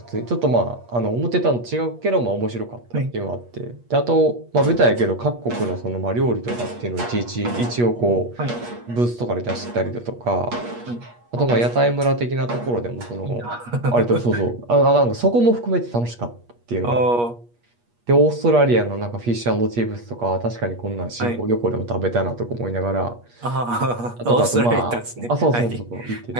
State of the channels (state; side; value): late; left; 8.4 ms